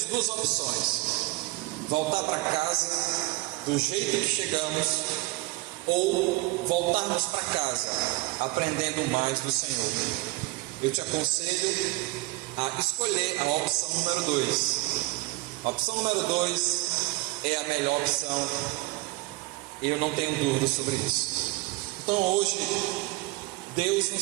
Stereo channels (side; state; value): left; quieter; 21.4 dB